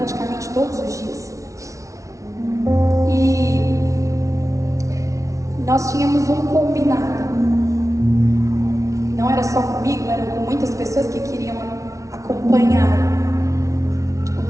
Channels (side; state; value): left; late; 0.15 ms